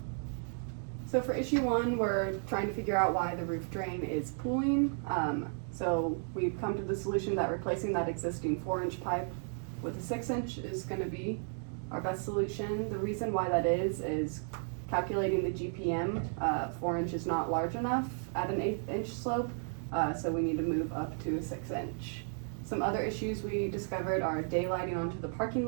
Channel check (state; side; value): silent; left; 55 dB below the other